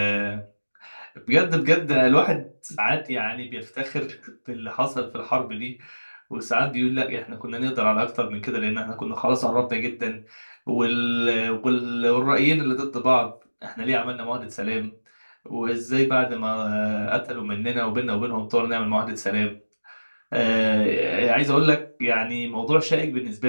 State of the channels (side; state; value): both; inverted; correlation -1.00